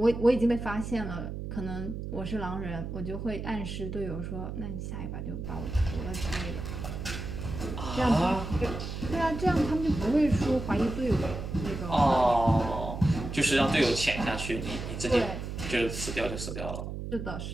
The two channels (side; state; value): right; noise; hum, 6 dB below the sound